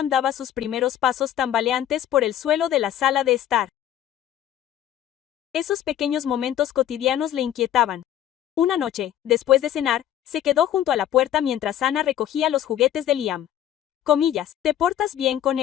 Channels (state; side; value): quieter; right; 11.2 dB